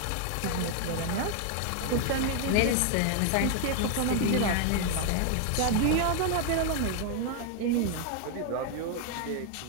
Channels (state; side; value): different; both; correlation 0.00